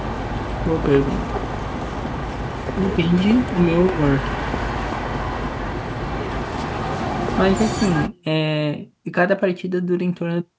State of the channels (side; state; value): both; identical; correlation 1.00